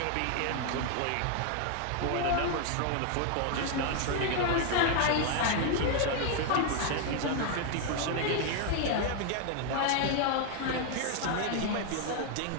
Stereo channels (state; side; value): different; both; correlation 0.00